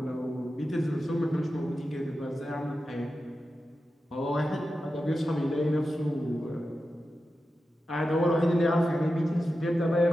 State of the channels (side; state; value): both; normal; correlation 0.92